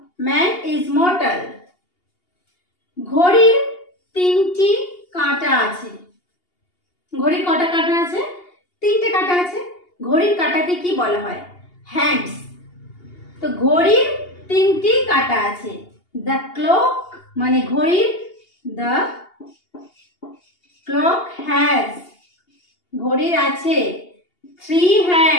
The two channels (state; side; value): late; right; 2.8 ms